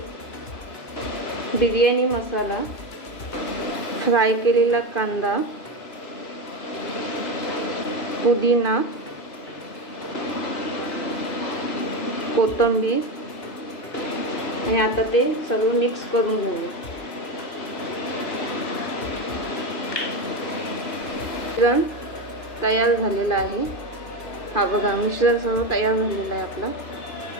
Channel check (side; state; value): right; late; 2.9 ms